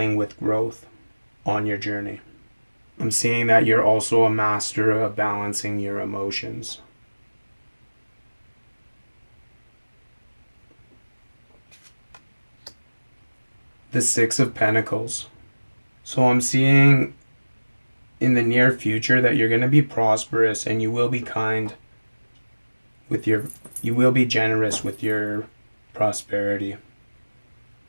with growth on your journey. I'm seeing that you're also a master of balancing your emotions. The Six of Pentacles. So I'm seeing in the near future that you're going to be prosperous and you will be kind with you will be generous with your prosperity.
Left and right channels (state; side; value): inverted; both; correlation -1.00